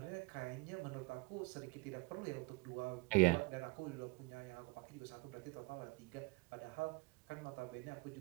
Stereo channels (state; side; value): quieter; left; 24.6 dB